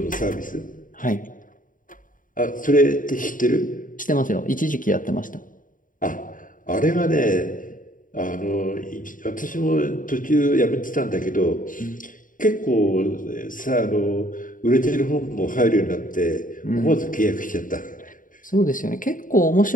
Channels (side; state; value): right; late; 0.39 ms